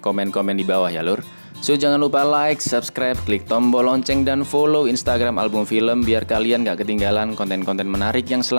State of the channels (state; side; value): inverted; both; correlation -1.00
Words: di bawah ya lur. So jangan lupa like, subscribe, klik tombol lonceng dan follow Instagram Album Film biar kalian gak ketinggalan konten-konten menarik yang